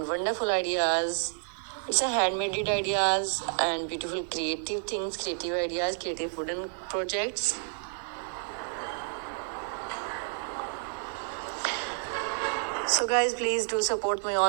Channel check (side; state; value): left; silent; 58 dB below the other